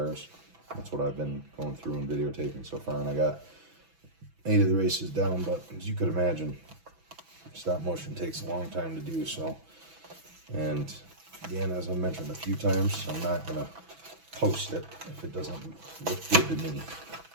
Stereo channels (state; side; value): late; left; 6.1 ms